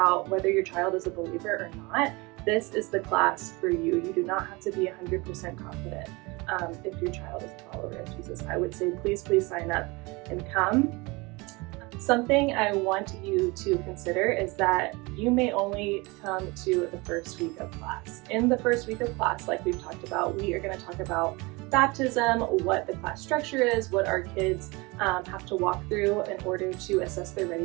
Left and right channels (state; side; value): quieter; left; 25.3 dB